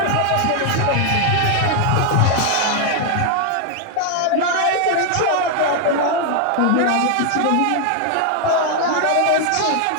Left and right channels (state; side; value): different; both; correlation 0.00